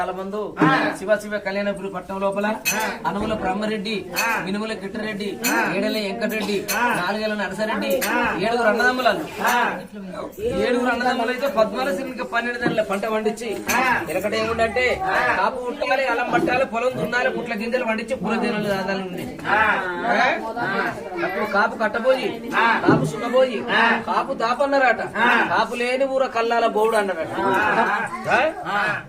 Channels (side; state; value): both; identical; correlation 1.00